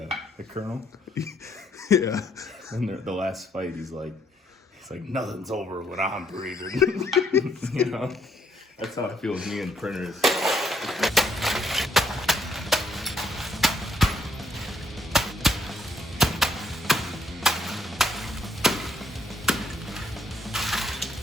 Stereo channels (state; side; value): normal; both; correlation 0.70